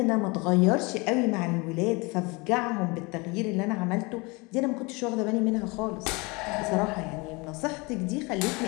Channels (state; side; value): quieter; right; 26.9 dB